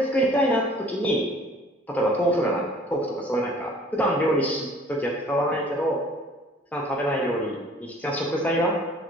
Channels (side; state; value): both; normal; correlation 0.52